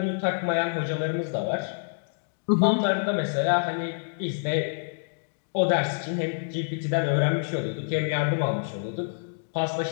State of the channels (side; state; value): right; silent; digital silence